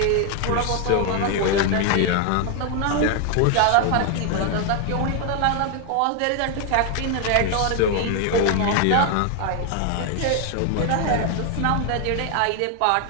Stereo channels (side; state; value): both; different; correlation 0.00